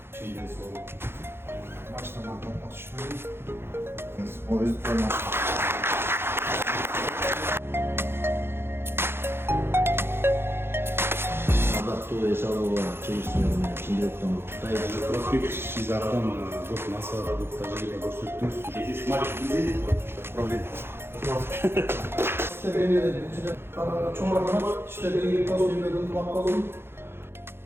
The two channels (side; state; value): left; late; 0.11 ms